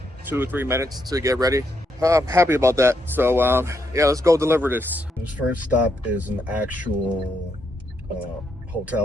2 or 3 minutes to get ready. I'm happy about that. So yeah, let's go deliver this. This first stop is an actual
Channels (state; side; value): normal; both; correlation 0.78